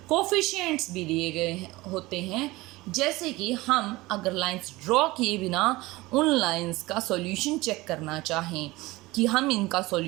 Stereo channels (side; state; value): left; quieter; 20.5 dB